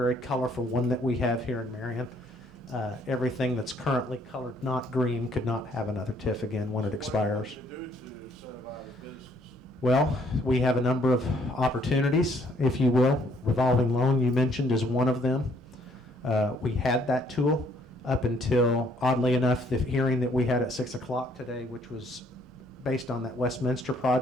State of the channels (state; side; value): normal; both; correlation 0.65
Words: colorful one that we have here in Marion, everything that's currently colored not green could not have another TIF again when it expires. What are you going to do to incentivize business? Well, we have a number of opportunities, if you will. Revolving loan you mentioned is one of them. We had that tool up until, oddly enough, the hearing that we had at 6 o'clock today, which was based on that Westminster